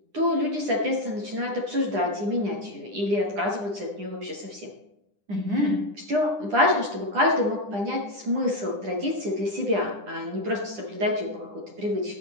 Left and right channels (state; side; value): late; left; 9.9 ms